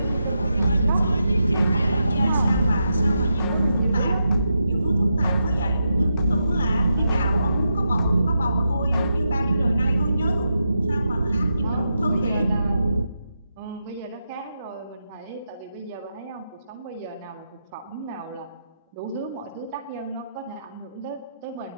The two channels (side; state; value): both; inverted; correlation -0.85